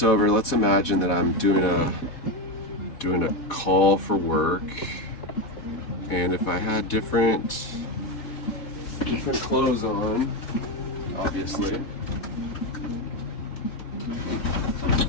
over. Let's imagine that I'm doing a call for work, and if I had different clothes on, obviously.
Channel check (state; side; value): late; right; 4.1 ms